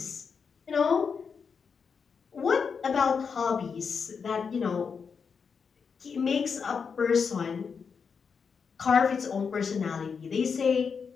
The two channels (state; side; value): quieter; right; 5.9 dB